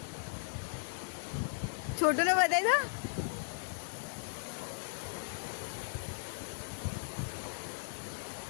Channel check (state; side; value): silent; right; 53 dB below the other